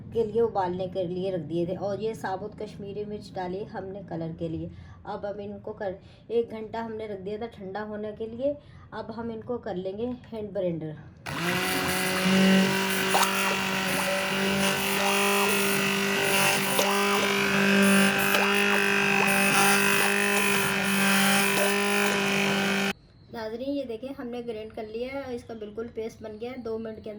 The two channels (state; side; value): identical; both; correlation 1.00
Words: के लिए उबालने के लिए रख दिए थे। और ये साबुत कश्मीरी मिर्च डाली हमने कलर के लिए। अब इनको 1 घंटा हमने रख दिया था ठंडा होने के लिए। अब हम इनको कर लेंगे हैंड ब्लेंडर। नाज़रीन, ये देखें हमने ग्राइंड कर लिया है। इसका बिल्कुल पेस्ट बन गया है। 2 मिनट के